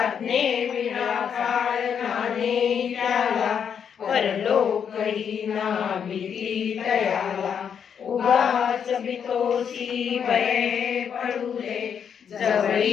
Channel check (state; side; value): quieter; right; 7.6 dB